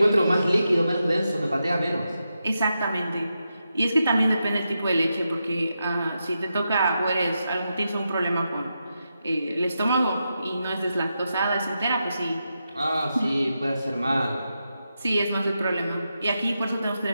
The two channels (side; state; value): both; inverted; correlation -0.87